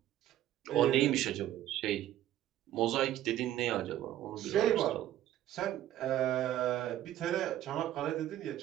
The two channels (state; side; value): quieter; left; 12.8 dB